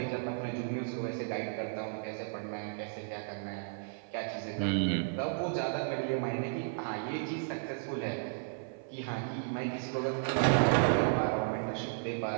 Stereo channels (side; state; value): left; silent; 55 dB below the other